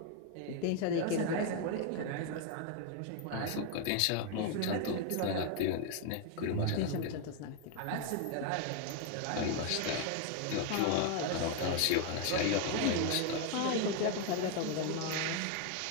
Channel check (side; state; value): both; different; correlation 0.01